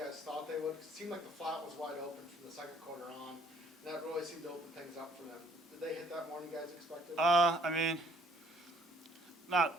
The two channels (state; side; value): normal; both; correlation 0.60